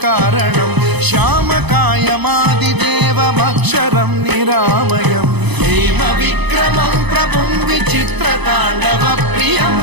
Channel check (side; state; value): left; late; 0.99 ms